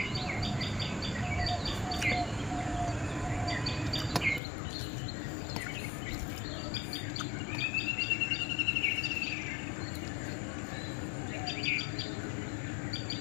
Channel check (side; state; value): right; drops out; at 4.4 s